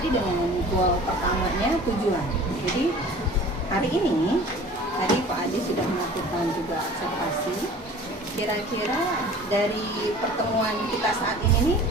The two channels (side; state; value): both; normal; correlation 0.45